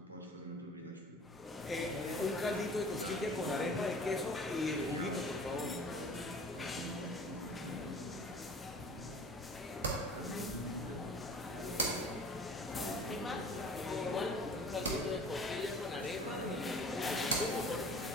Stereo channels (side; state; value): both; normal; correlation 0.45